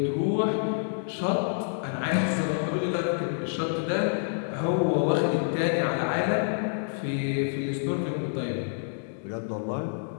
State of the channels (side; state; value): right; silent; digital silence